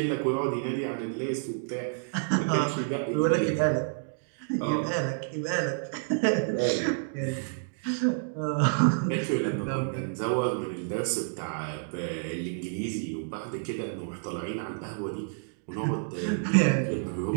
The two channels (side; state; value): left; silent; digital silence